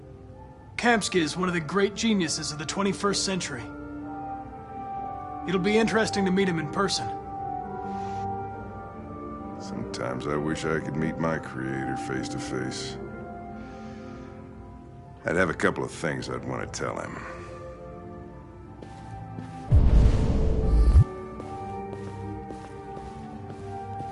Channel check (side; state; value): both; identical; correlation 1.00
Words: Kamsky is one of the great geniuses of the 21st century. It'll be interesting to meet him in person. Sometimes I wish I could meet my creator face to face. I'd have a couple of things I'd want to tell him.